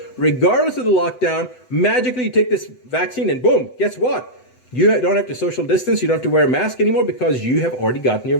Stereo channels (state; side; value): late; right; 7.9 ms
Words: regardless of the lockdown. Magically, you take this vaccine and boom, guess what? You don't have to social distance. You don't have to wear a mask anymore because you have already gotten your